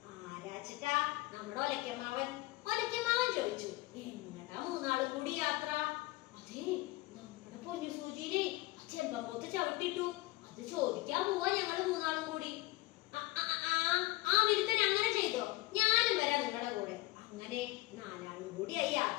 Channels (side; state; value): right; quieter; 20.3 dB